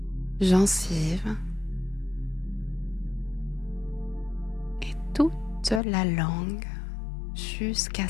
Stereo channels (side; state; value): right; drops out; at 5.8 s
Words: gencives et toute la langue jusqu'à